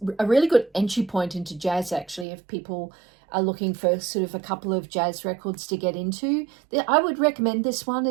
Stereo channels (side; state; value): left; drops out; at 2.2 s